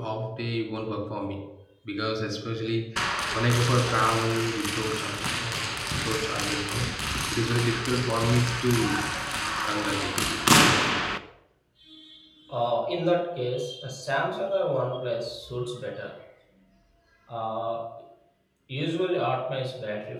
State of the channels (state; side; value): identical; both; correlation 1.00